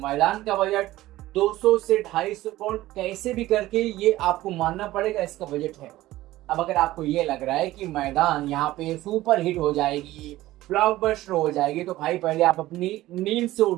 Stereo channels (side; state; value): left; quieter; 16.4 dB